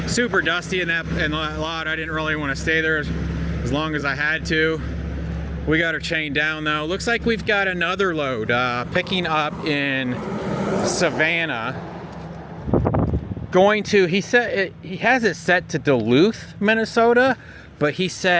Super dusty in that lot. I didn't really want to stay there as long as I had to. We got her chained down though. Looks like we've got another load picking up in Savannah. Going to, he said he has it set to Duluth, Minnesota, but he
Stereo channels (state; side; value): identical; both; correlation 1.00